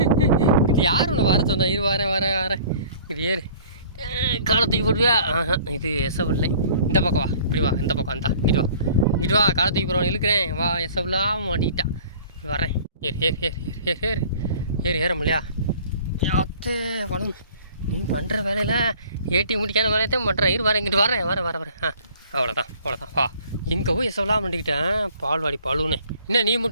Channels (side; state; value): both; inverted; correlation -0.50